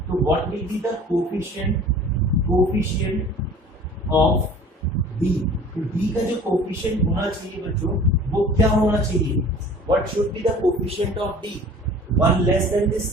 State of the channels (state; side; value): normal; both; correlation 0.46